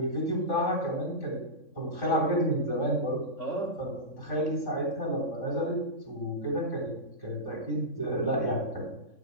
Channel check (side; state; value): right; late; 3.6 ms